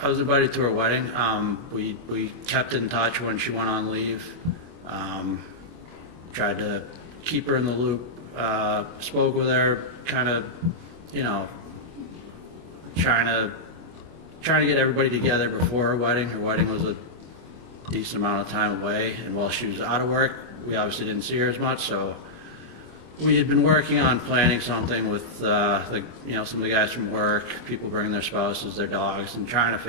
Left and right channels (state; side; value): late; left; 25 ms